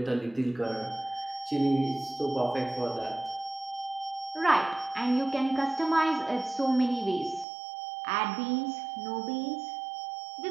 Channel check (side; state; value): left; drops out; at 7.5 s